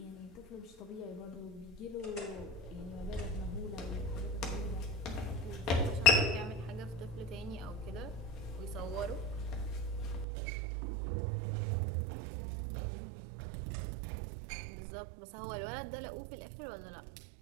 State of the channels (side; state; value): left; drops out; at 10.2 s